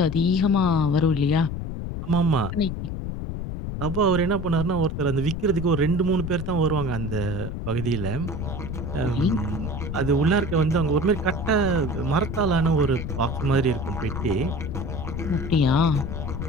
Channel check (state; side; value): noise; left; rumble, 5 dB below the sound